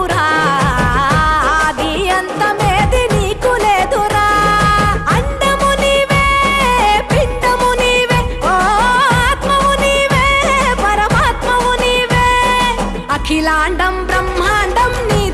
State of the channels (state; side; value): identical; both; correlation 1.00